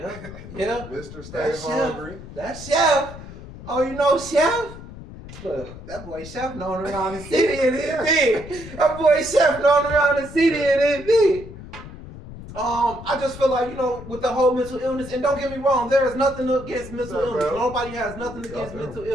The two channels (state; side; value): noise; left; rumble, 14 dB below the sound